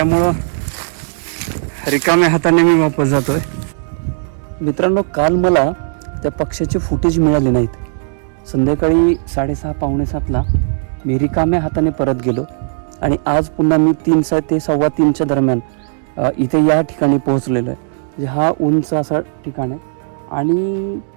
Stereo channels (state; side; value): silent; left; digital silence